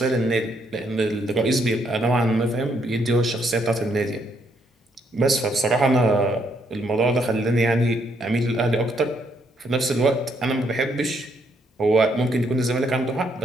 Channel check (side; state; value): both; normal; correlation 0.73